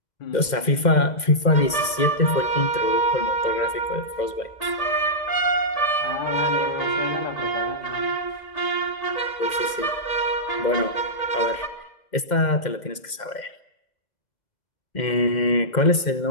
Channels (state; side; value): late; right; 2.1 ms